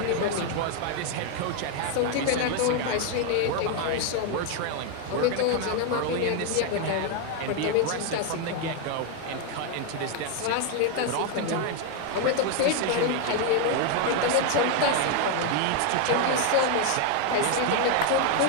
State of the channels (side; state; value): both; different; correlation 0.01